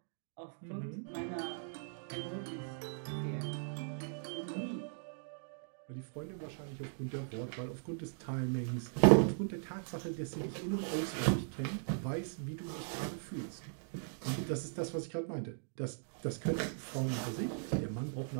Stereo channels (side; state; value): left; silent; digital silence